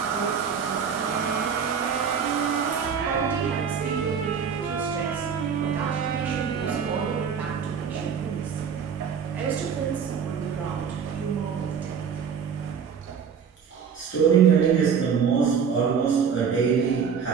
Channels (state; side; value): quieter; left; 6.9 dB